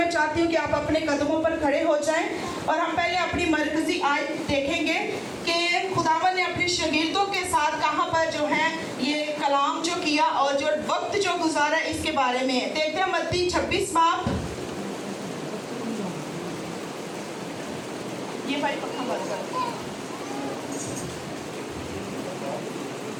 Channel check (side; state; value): both; identical; correlation 1.00